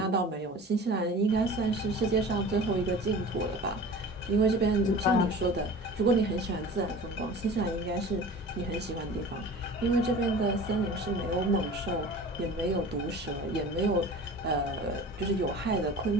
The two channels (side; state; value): both; normal; correlation 0.40